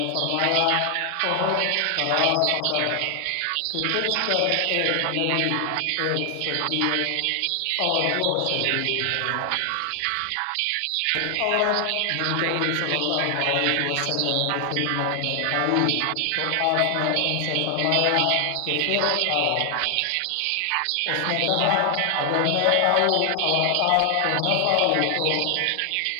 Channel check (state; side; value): different; both; correlation 0.00